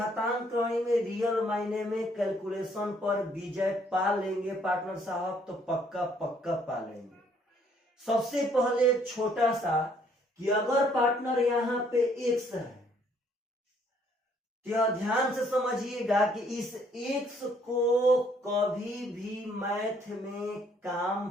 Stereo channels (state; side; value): normal; both; correlation 0.65